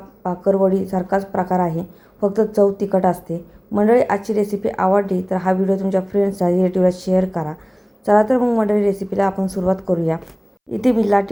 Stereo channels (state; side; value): identical; both; correlation 1.00